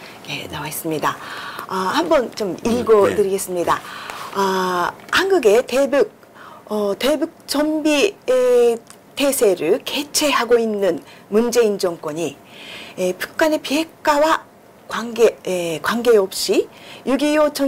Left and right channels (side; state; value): both; identical; correlation 1.00